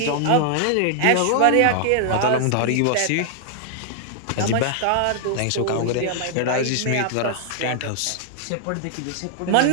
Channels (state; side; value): different; both; correlation -0.01